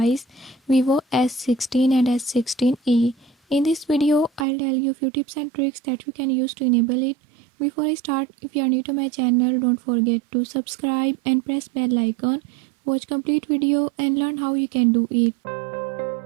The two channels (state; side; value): drops out; left; at 4.5 s